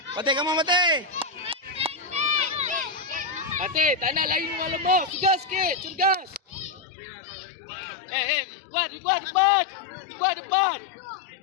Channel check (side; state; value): right; drops out; at 6.9 s